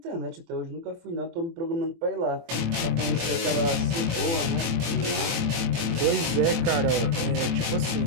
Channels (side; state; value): left; late; 24 ms